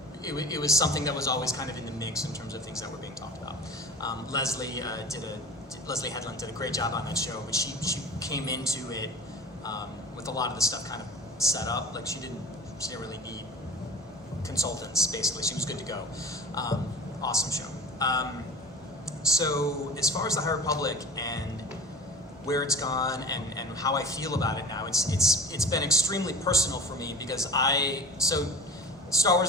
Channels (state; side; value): normal; both; correlation 0.38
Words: it was something that was always kind of in the mix in terms of things that were being talked about. Leslie Headland did a great job on that show, but she came into it with a lot of the stuff kind of set up. Like she didn't really need consultants, basically. She was good to go. Awesome show. So as far as the High Republic and where it's gone and how I feel about it now, it's been extremely personal for me because Star